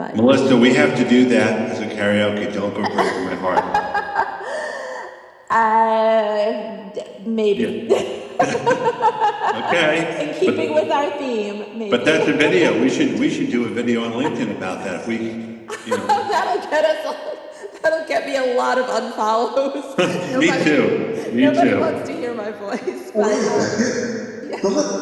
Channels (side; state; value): both; identical; correlation 1.00